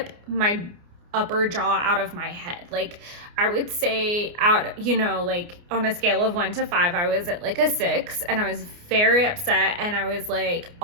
my upper jaw out of my head. Like I would say like on a scale of 1 to 5, I was at like a 6, and I was very upset, and I was like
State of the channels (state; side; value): late; left; 29 ms